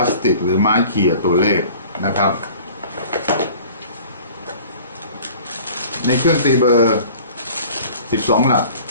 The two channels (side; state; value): both; inverted; correlation -0.46